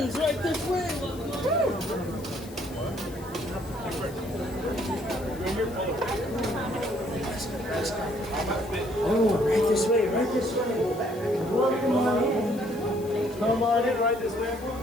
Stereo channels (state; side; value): noise; left; hiss, 20 dB below the sound